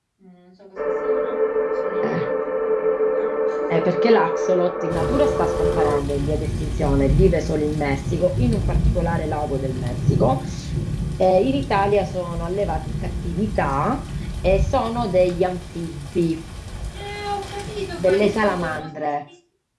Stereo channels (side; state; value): both; identical; correlation 1.00